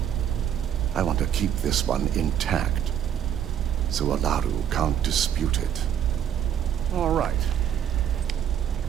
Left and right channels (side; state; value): left; quieter; 9.4 dB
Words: I want to keep this one intact, so Ularu can't dispute it. All right.